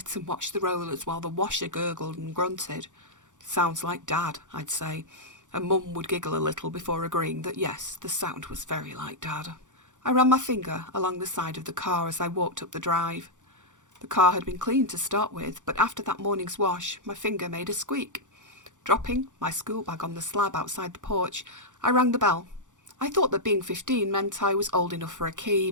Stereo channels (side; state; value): left; late; 0.86 ms